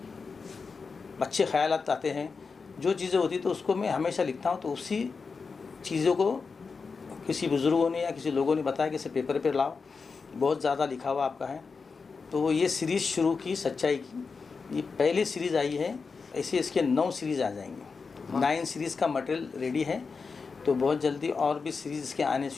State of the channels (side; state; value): right; quieter; 4.9 dB